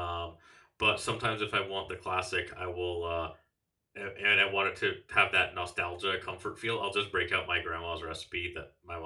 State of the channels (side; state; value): both; identical; correlation 1.00